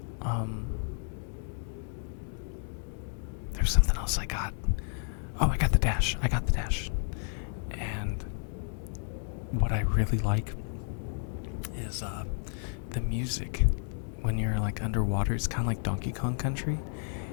There's something else I got. Oh, I got the dash. And what I really like is the music. When you're like underwater, it's kind of like Donkey Kong Country.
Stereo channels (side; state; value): right; silent; 57 dB below the other